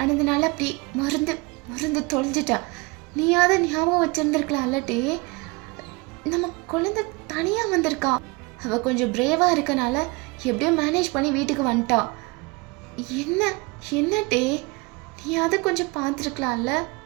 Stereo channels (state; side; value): quieter; left; 26.0 dB